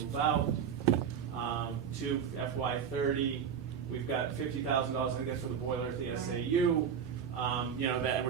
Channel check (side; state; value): left; quieter; 7.7 dB